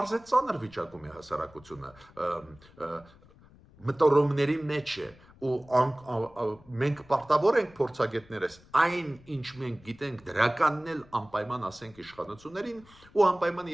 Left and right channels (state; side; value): noise; left; rumble, 25 dB below the sound